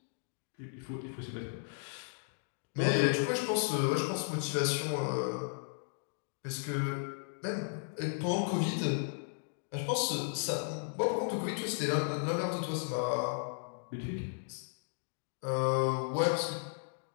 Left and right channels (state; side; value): silent; right; digital silence